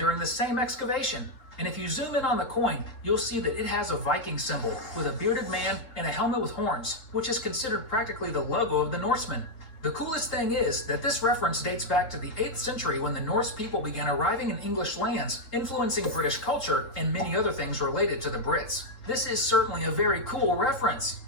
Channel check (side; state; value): right; late; 3.7 ms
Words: the same excavation. And if you zoom in on the coin, you'll see that it has a Viking symbol with a bearded man and a helmet with horns, which is considered practically the logo of the Norsemen. The coolest thing is that this reference dates back to the 8th century when the Norse people began arriving in English lands, influencing British culture and many other things related to the Brits. This is certainly a very cool reference.